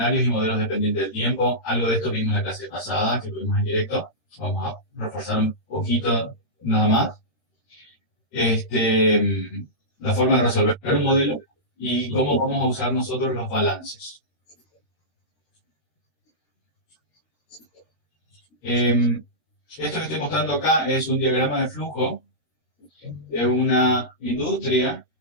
y modelos dependientes del tiempo. Algo de esto vimos en la clase pasada, que tuvimos en directo. Vamos a reforzar un poquito nada más. La forma de resolver un modelo y cómo vamos a usar nosotros los balances. Esto que estoy mostrando acá es un diagrama de flujo de una industria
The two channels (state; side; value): late; right; 13 ms